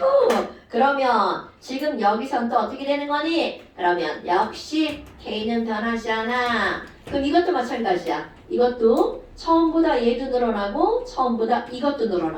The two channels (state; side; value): identical; both; correlation 1.00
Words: 그러면 지금 여기선 또 어떻게 되는 거니? 그러면 역시 K는 변하지 않아. 그럼 이것도 마찬가지야. 이것도 처음보다 얘도 늘어나고 처음보다 이것도